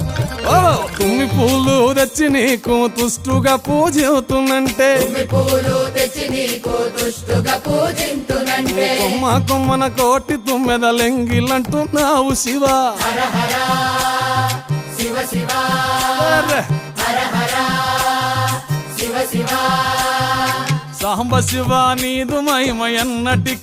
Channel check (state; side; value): identical; both; correlation 1.00